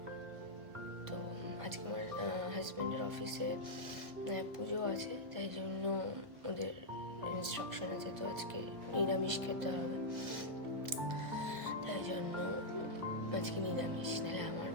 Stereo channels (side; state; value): left; late; 1.5 ms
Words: তো আজকে আমার হাজব্যান্ডের অফিসে পুজো আছে, তাই জন্য ওদের ইনস্ট্রাকশন আছে, তো আজকে নিরামিষ খেতে হবে। তাই জন্য আজকে নিরামিষ, নাহলে আমার